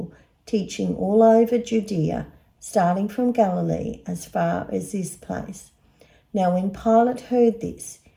teaching all over Judea, starting from Galilee as far as this place." Now when Pilate heard this,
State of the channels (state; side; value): identical; both; correlation 1.00